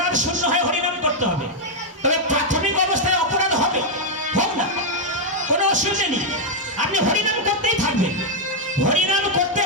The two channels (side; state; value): both; normal; correlation -0.01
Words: শূন্য হয়ে হরিনাম করতে হবে তবে প্রাথমিক অবস্থায় অপরাধ হবে হোক না কোনো অসুবিধা নেই আপনি হরিনাম করতেই থাকবেন হরিনাম করতে